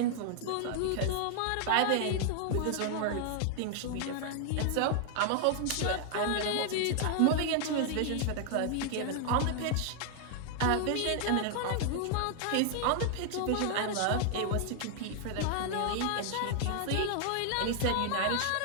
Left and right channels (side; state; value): both; different; correlation 0.00